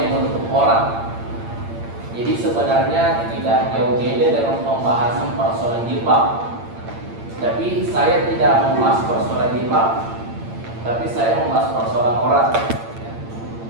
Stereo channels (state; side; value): late; left; 8.8 ms